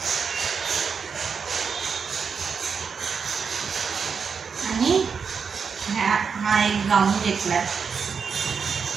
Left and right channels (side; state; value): left; quieter; 6.0 dB